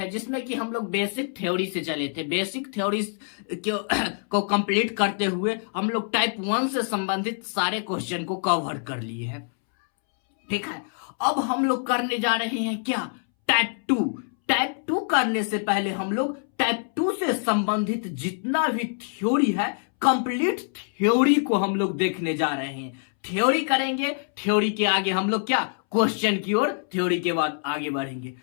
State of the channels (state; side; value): silent; right; 61 dB below the other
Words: जिसमें कि हम लोग बेसिक थ्योरी से चले थे। बेसिक थ्योरी को कंप्लीट करते हुए हम लोग टाइप वन से संबंधित सारे क्वेश्चन को कवर कर लिए हैं। ठीक है, अब हम लोग करने जा रहे हैं क्या, टाइप टू। टाइप टू करने से पहले हम लोग टाइप टू से संबंधित जितना भी थ्योरी है, कंप्लीट थ्योरी को हम लोग देखने जा रहे हैं। थ्योरी करेंगे, थ्योरी के आगे हम लोग क्या, क्वेश्चन की ओर, थ्योरी के बाद आगे बढ़ेंगे।